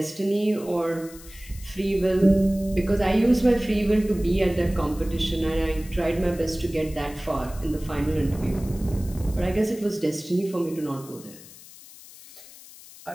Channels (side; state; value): left; noise; hiss, 19 dB below the sound